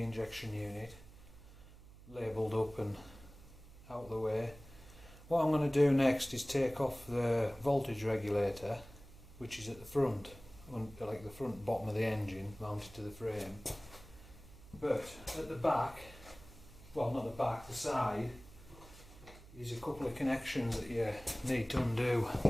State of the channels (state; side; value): noise; right; hum, 19 dB below the sound